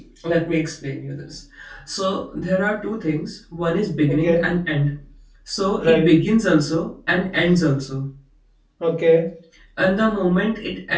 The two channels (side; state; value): both; identical; correlation 1.00